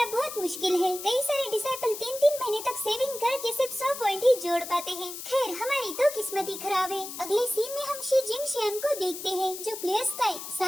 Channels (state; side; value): noise; left; hiss, 9 dB below the sound